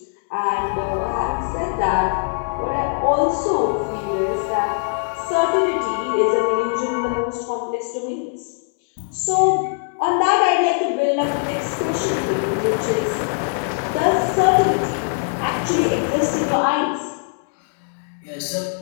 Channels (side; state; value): right; silent; digital silence